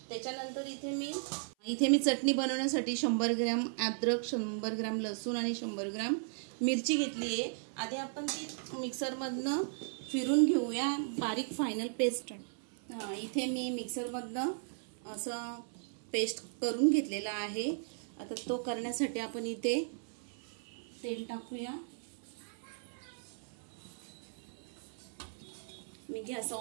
त्याच्यानंतर इथे मी चटणी बनवण्यासाठी 100 ग्रॅम अद्रक, 100 ग्रॅम लसूण आणि 100 ग्रॅम मिरची घेतली आहे। आधी आपण ती मिक्सरमधनं फिरून घेऊया बारीक फायनल पेस्ट। इथे मी मिक्सरमधनं असं पेस्ट करून घेतलेला आहे। आता तो करण्यासाठी आपण इथे तेल टाकूया। मी गॅस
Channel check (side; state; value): left; silent; 54 dB below the other